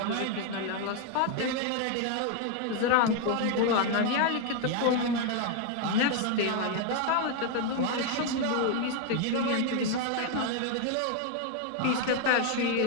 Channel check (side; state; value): both; different; correlation 0.01